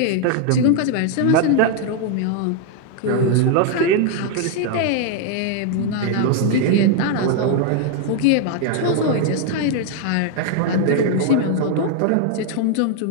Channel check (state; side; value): different; both; correlation 0.00